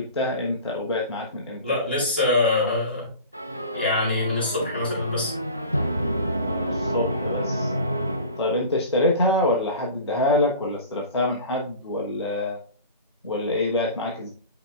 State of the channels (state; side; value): inverted; both; correlation -0.39